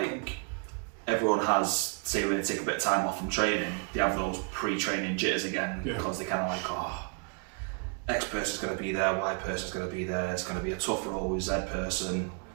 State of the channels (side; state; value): left; quieter; 38.6 dB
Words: everyone has, say when they take a bit of time off from training, they have those pre-training jitters again because they kind of like, X person's going to be there, Y person's going to be there, it's going to be a tough role with Z person.